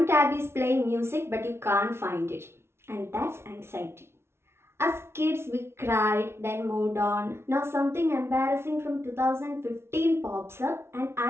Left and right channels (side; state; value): left; late; 0.12 ms